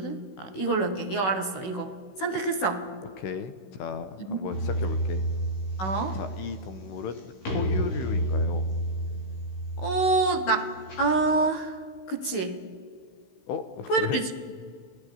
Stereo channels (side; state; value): right; late; 16 ms